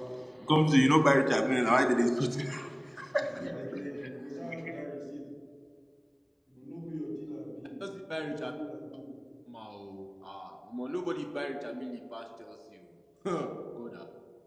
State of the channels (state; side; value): identical; both; correlation 1.00